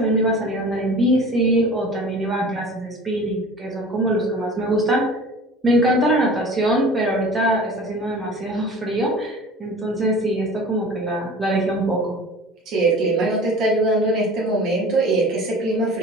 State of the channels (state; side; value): normal; both; correlation 0.41